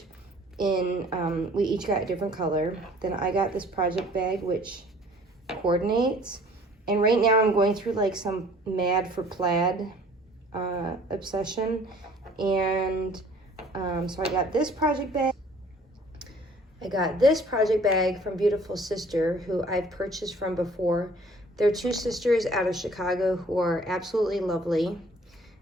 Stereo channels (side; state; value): both; normal; correlation 0.54